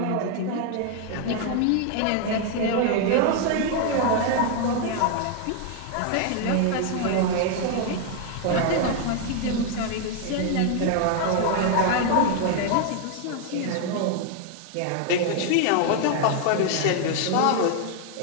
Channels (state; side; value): different; both; correlation 0.00